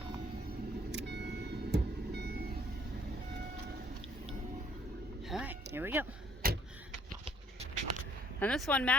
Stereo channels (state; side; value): normal; both; correlation 0.63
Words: All right, here we go. And this one,